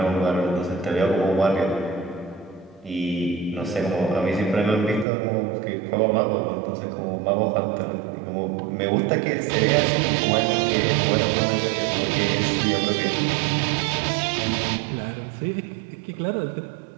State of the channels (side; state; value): left; drops out; at 5.1 s